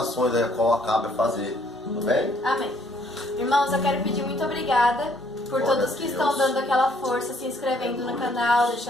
aí, a qual acaba de fazer, tudo bem? Amém. Irmãos, eu quero pedir muito obrigada por Glória todos a que Deus. estão dando aquela força, se inscrevendo no canal,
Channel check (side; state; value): both; normal; correlation 0.65